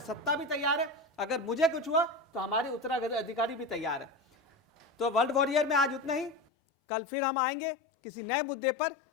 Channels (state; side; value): drops out; right; at 6.5 s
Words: सत्ता भी तैयार है, अगर मुझे कुछ हुआ तो हमारे उत्तराधिकारी भी तैयार है। तो वर्ल्ड वॉरियर में आज उतना ही। कल फिर हम आएंगे किसी नए मुद्दे पर।